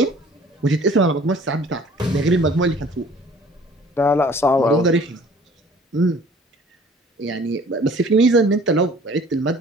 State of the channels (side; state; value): both; normal; correlation 0.52